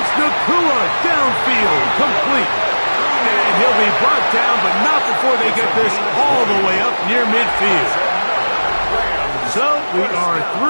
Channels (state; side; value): inverted; both; correlation -1.00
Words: Nakua downfield, complete. And he'll be brought down, but not before they get this all the way up near midfield. So we are